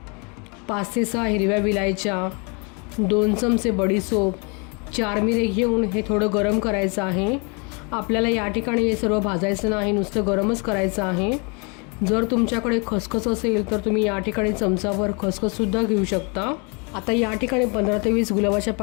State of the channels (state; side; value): quieter; right; 33.1 dB